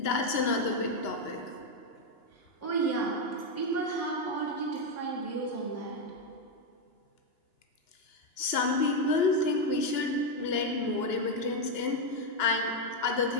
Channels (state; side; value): late; right; 2.9 ms